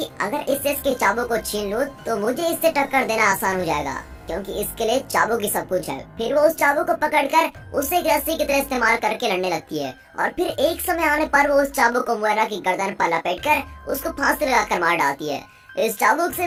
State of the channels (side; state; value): both; identical; correlation 1.00